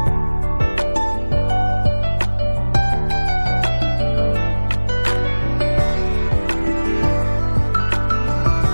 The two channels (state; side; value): inverted; both; correlation -1.00